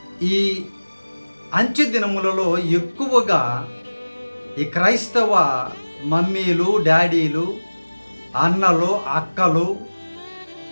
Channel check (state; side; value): inverted; both; correlation -1.00